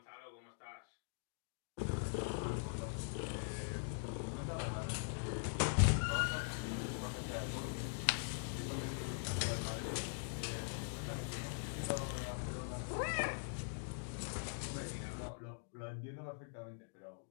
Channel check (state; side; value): silent; right; digital silence